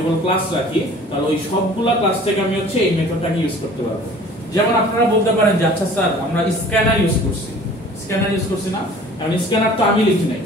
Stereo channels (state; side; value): normal; both; correlation 0.48